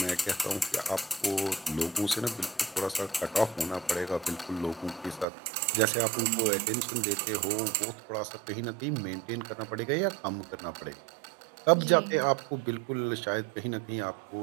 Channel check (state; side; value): drops out; left; at 5.2 s